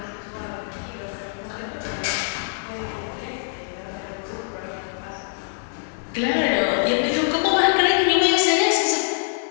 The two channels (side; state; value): right; silent; digital silence